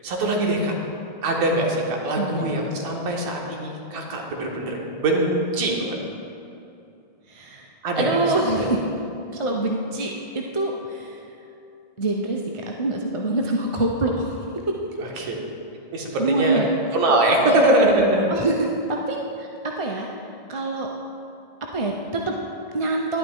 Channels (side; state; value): right; late; 1.7 ms